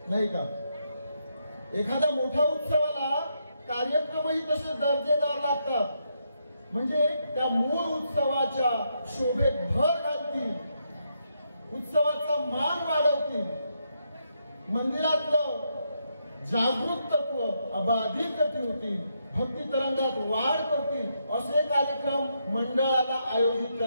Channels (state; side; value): inverted; both; correlation -0.79